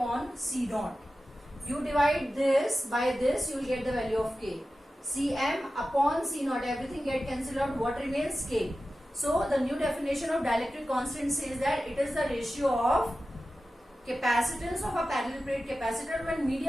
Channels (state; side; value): normal; both; correlation 0.94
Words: C naught. You divide this by this, you will get the value of K. Cm upon C naught, everything get cancelled out. What remains? K. So the new definition of dielectric constant says that it is the ratio of capacitance of a parallel plate capacitor when